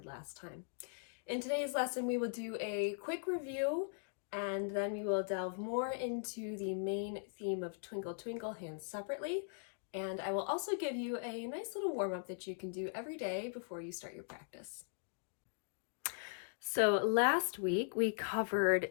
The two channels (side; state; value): right; silent; digital silence